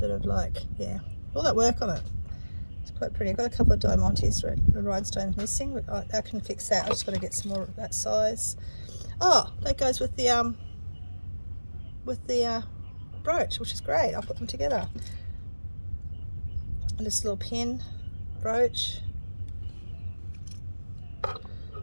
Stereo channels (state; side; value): inverted; both; correlation -1.00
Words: of like, yeah, all that work on it. It's quite pretty. I've got a couple of diamantes, rhinestones missing, but I can fix that. I just got to get some more of that size. Oh, that goes with the brooch, which is great. I'll put them together. And this little pin brooch,